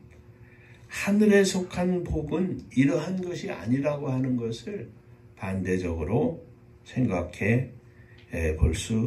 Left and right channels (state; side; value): identical; both; correlation 1.00